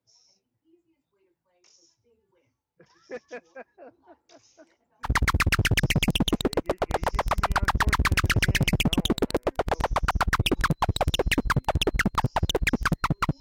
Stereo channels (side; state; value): both; identical; correlation 1.00